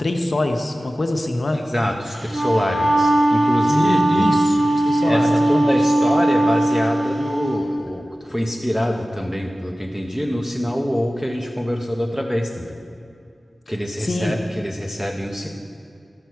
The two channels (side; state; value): both; normal; correlation 0.96